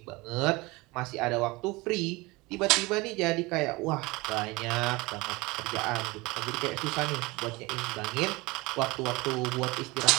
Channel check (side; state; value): left; quieter; 23.1 dB